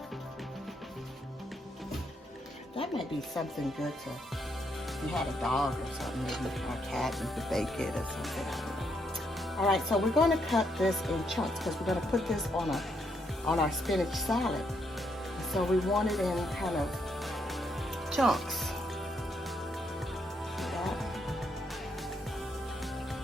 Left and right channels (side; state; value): both; normal; correlation 0.76